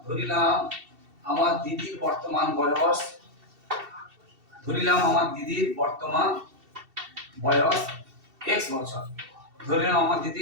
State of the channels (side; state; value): left; late; 2.7 ms